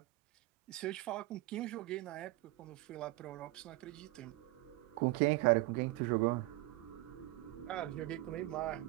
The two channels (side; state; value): left; quieter; 19.2 dB